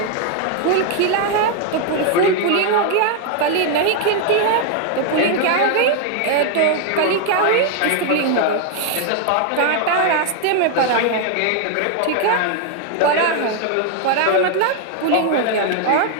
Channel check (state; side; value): different; both; correlation 0.00